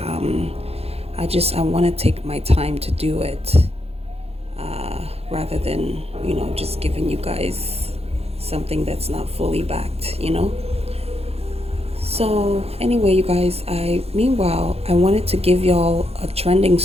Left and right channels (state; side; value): late; left; 0.29 ms